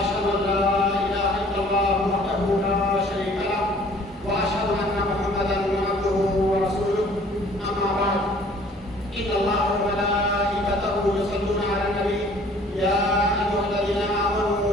أن لا إله إلا الله وحده لا شريك له وأشهد أن محمدا عبده ورسوله أما بعد إن الله وملائكته يصلون على النبي يا أيها الذين آمنوا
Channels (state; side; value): normal; both; correlation 0.54